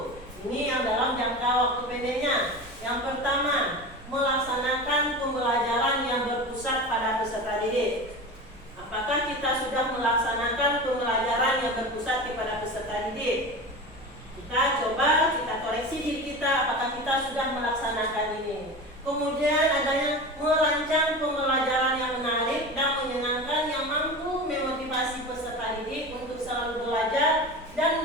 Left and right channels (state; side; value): normal; both; correlation 0.29